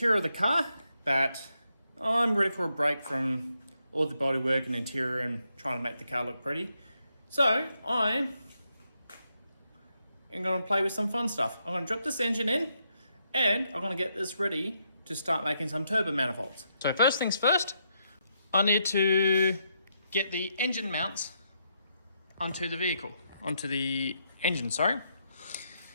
of the car, but I'm ready for a break from all the bodywork and interior and trying to make the car look pretty. So I am going to play with some fun stuff. I'm going to drop this engine in and I'm going to get this ready to start making some turbo manifolds. So first things first, I need to get the engine mounts onto the vehicle, onto the engine, sorry.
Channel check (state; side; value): inverted; both; correlation -0.79